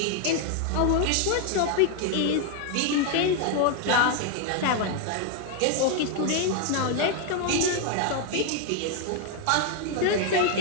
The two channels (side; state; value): both; different; correlation 0.00